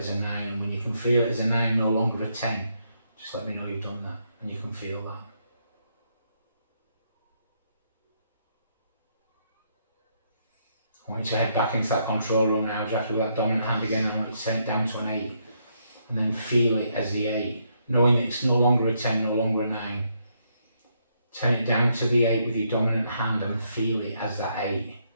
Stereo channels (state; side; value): inverted; both; correlation -0.75